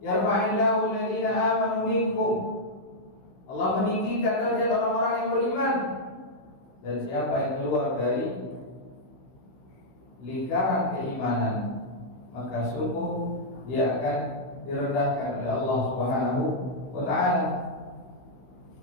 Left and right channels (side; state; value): right; late; 16 ms